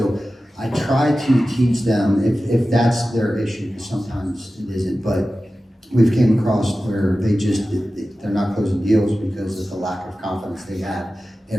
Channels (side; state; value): both; normal; correlation 0.95